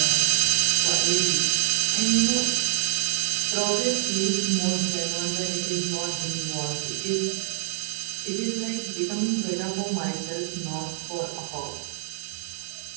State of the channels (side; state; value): left; silent; 61 dB below the other